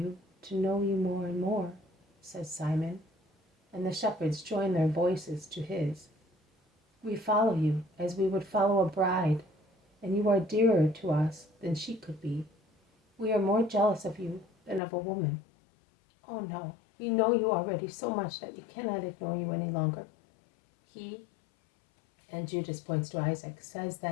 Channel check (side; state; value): right; drops out; at 14.8 s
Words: to know you more and more, says Simon, and the shepherds join their voices to his. We follow you as we would follow a bride, and you are dearer to us than she could be. We are more jealous of you than of a woman. Oh no, we know you already so much that we cannot ignore you any longer. He, and Judas points to Isaac, says